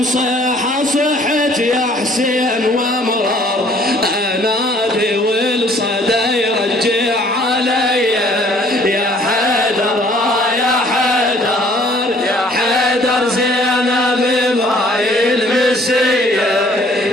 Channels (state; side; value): normal; both; correlation 0.58